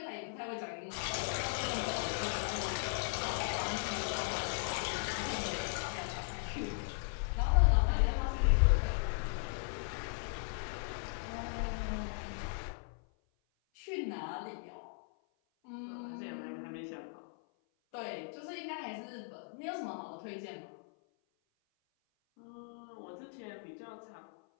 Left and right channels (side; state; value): right; silent; 53 dB below the other